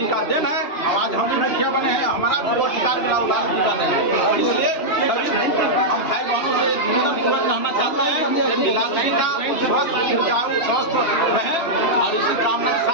का दिन है। आवाज हम भी मुखिया बने हैं, हमारा भी अधिकार मिला लालू जी का दिन है। इसलिए सभी हम भाई बहनों से निवेदन पूर्वक कहना चाहते हैं कि लालू जी का स्वस्थ रहे और इसी कामना के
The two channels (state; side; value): late; right; 3.0 ms